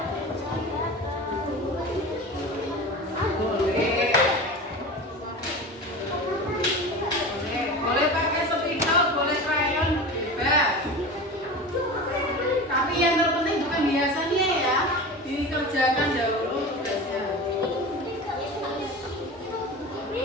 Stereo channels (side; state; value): both; normal; correlation 0.31